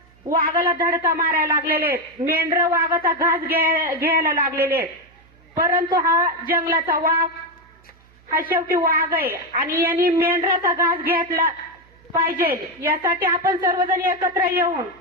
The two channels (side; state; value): right; noise; hum, 30 dB below the sound